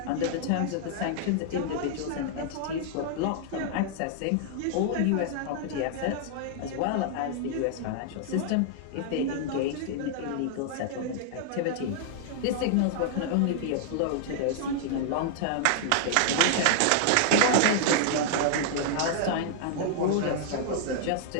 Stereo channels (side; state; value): both; different; correlation -0.01